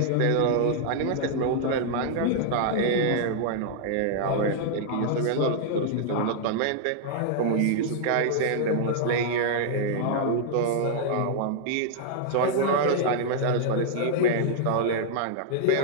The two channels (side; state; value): both; different; correlation -0.01